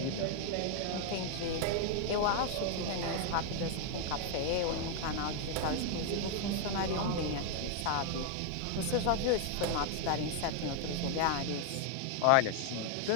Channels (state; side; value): different; both; correlation 0.01